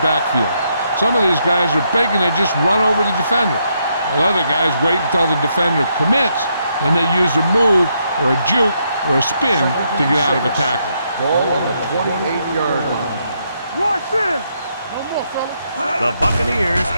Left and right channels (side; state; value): both; inverted; correlation -0.77